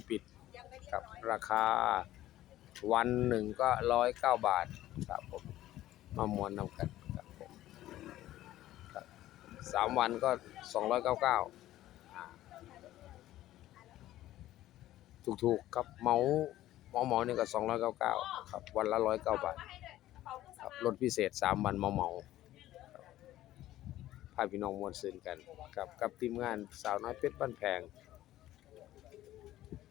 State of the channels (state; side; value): quieter; right; 14.4 dB